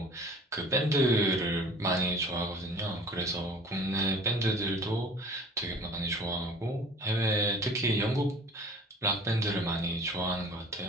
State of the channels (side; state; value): both; normal; correlation 0.46